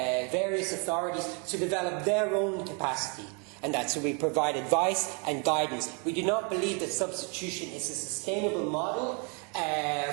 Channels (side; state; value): left; quieter; 35.9 dB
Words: various authorities to develop their own capacity. And that's so we provide advice and guidance. We do not believe that substitution is a sustainable model